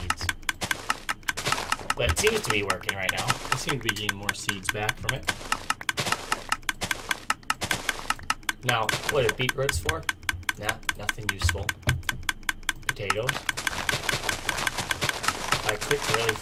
But it seems to be working right now. I seem to be getting more seeds back from it. Now, what are beetroots for? Nah, nothing useful. Potatoes. I clicked really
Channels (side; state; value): both; identical; correlation 1.00